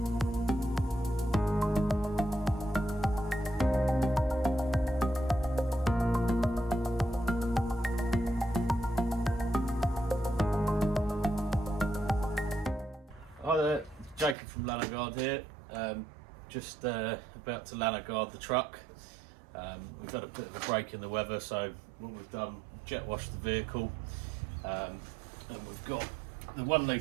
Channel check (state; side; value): drops out; left; at 14.4 s